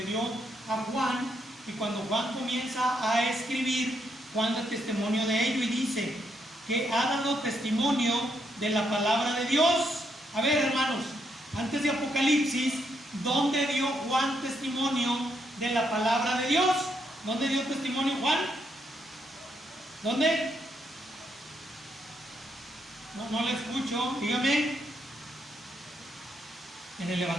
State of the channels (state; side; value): normal; both; correlation 0.77